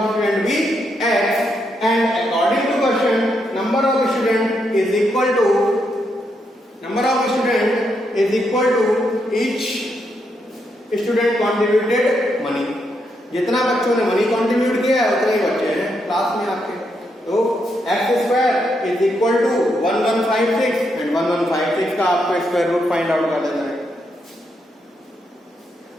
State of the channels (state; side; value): normal; both; correlation 0.80